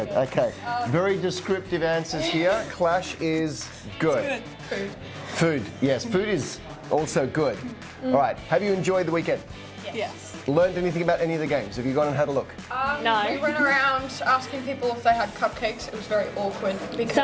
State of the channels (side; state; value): both; identical; correlation 1.00